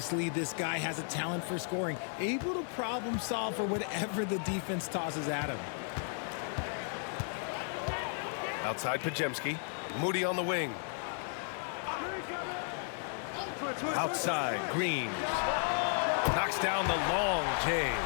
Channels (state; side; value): silent; right; 55 dB below the other